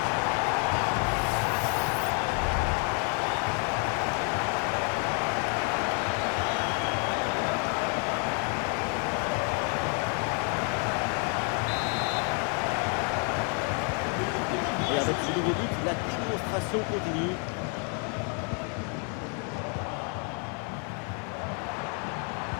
Et avec ce nouveau but, la démonstration continue.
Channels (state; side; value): quieter; right; 39.6 dB